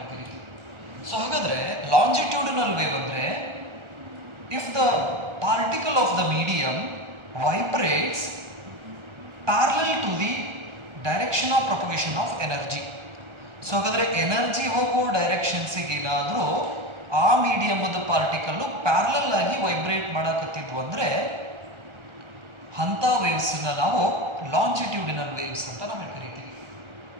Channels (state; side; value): late; left; 1.4 ms